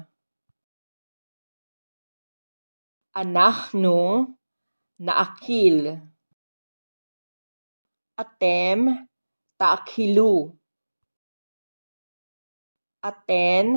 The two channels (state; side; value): inverted; both; correlation -1.00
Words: Anachnu, naakil. Atem, taakilu.